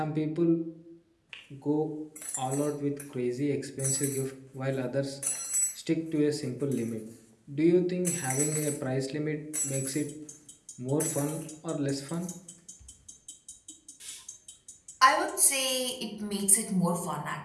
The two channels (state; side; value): identical; both; correlation 1.00